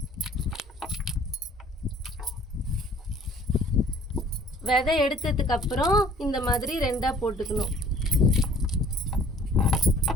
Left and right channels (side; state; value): both; normal; correlation 0.54